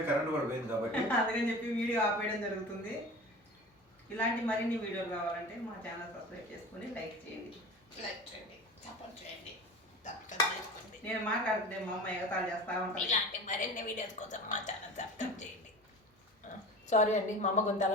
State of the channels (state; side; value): normal; both; correlation 0.36